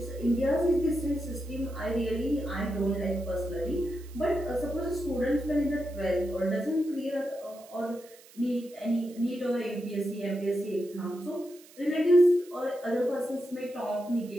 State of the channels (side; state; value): right; noise; hiss, 23 dB below the sound